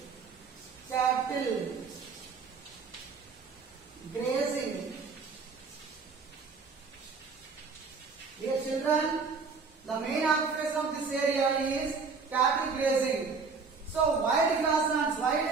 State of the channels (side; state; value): left; quieter; 4.9 dB